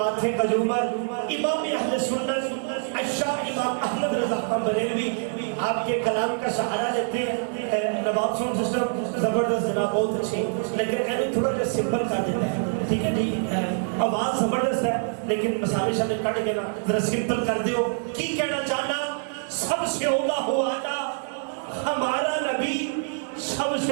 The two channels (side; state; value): left; silent; 59 dB below the other